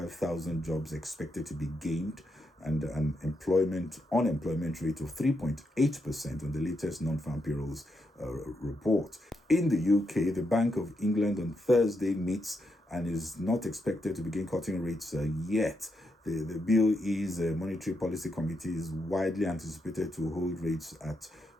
jobs expected to be gained, and an unemployment rate of 3.8% on the latest non-farm payrolls report. In the UK, the Bank of England on Thursday meets and is not expected to begin cutting rates yet. The BOE's Monetary Policy Committee is widely anticipated to hold rates at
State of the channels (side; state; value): both; normal; correlation 0.82